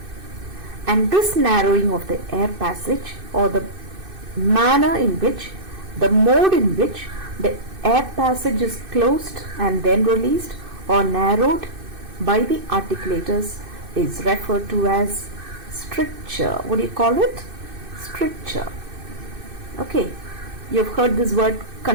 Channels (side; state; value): left; late; 2.6 ms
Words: And this narrowing of the air passage or the manner in which, the mode in which the air passage is closed and then released or narrowed by the articulators is referred to as stricture. What do you call it? stricture. Okay, you've heard this word